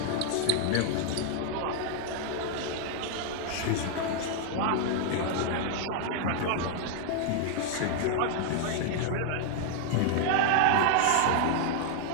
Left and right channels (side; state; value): both; different; correlation 0.00